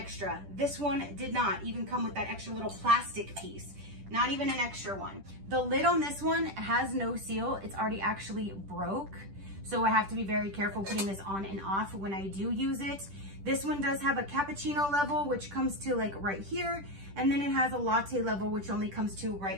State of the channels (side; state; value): left; late; 10 ms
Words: This one did not even come with that extra little plastic piece, not even an extra one. The lid on this one has no seal. It's already actually broke. So I have to be very careful putting this on and off when I do use it. This one does have a cappuccino level, which comes to like right here. And then it has a latte level, which only comes to